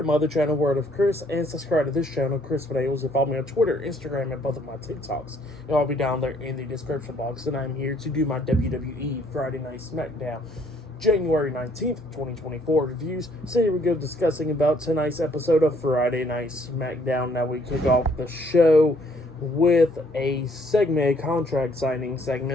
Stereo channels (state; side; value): normal; both; correlation 0.64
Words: my other channel, Word of Chris, and subscribe to this channel, Chris Videos, and follow me on Twitter, Instagram, and both of my TikToks. It'll all be down there in the description box. And I'm here to do my WWE Friday Night SmackDown January 19th, 2024 reviews. So here we go, discussing about tonight's episode of Friday Night SmackDown. Now we kick off the show with a segment, a contract signing